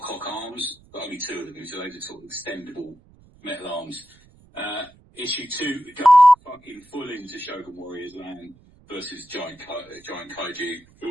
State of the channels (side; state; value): right; noise; rumble, 28 dB below the sound